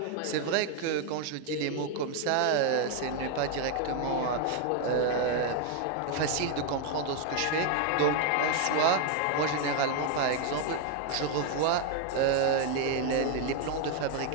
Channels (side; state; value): both; different; correlation 0.01